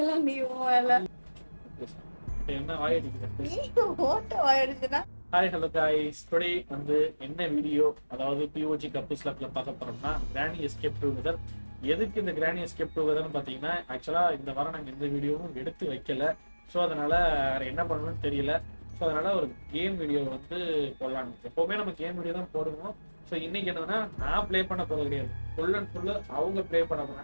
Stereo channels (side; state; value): both; inverted; correlation -1.00